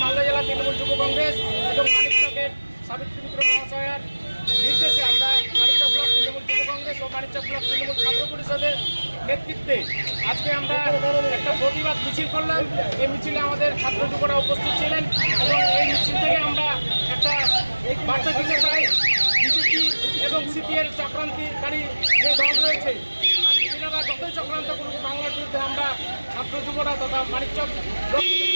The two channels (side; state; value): both; inverted; correlation -1.00